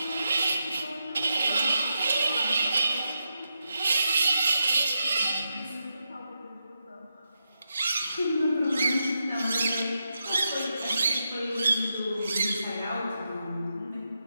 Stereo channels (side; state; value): both; inverted; correlation -0.86